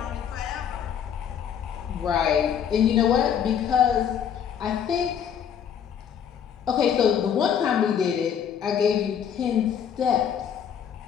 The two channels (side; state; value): right; quieter; 8.4 dB